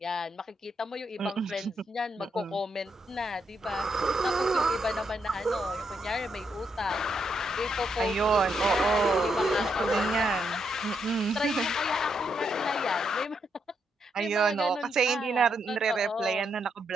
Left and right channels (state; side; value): normal; both; correlation 0.79